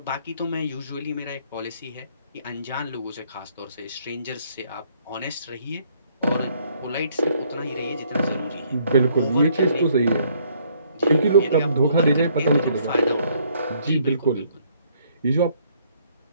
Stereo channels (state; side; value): inverted; both; correlation -0.65